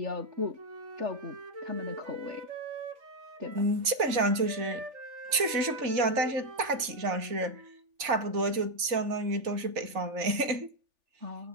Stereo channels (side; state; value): left; late; 3.4 ms